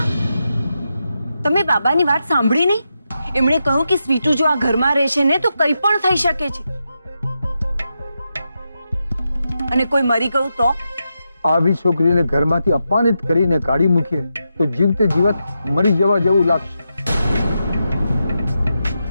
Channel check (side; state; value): both; inverted; correlation -0.87